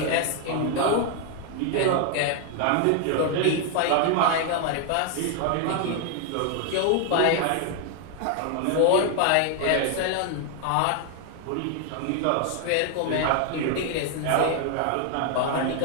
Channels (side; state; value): both; different; correlation 0.00